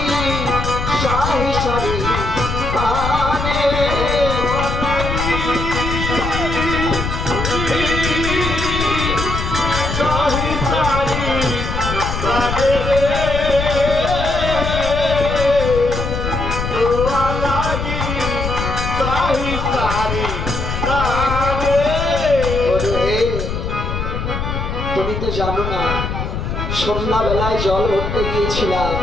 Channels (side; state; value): left; noise; rumble, 4 dB below the sound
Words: জানো না, সন্ধ্যাবেলায় জল ভরতে গিয়েছিলাম